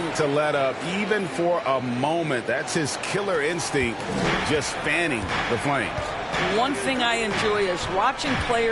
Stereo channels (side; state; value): both; identical; correlation 1.00